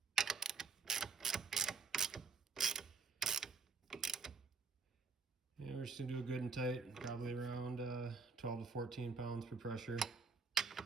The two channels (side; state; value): left; quieter; 4.8 dB